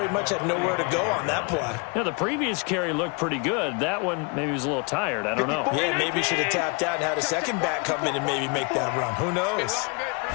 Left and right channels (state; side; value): quieter; right; 32.8 dB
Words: much had nowhere to go on that play. Yeah, the previous carry looked pretty good. That one, maybe he was a little tired. I don't know. Yeah, maybe he should have tapped out and had a second back come in and maybe make that run. Who knows?